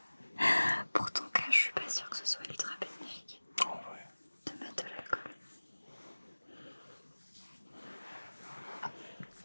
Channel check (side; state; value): both; inverted; correlation -1.00